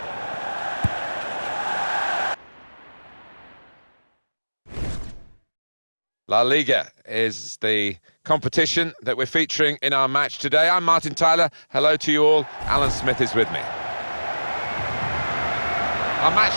La Liga is the competition that we're featuring in our match today. I'm Martin Tyler. Hello to you all. Alan Smith is with me. Our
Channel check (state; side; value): inverted; both; correlation -1.00